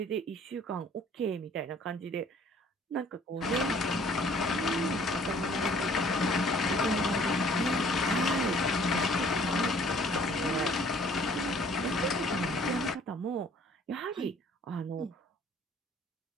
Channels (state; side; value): normal; both; correlation 0.56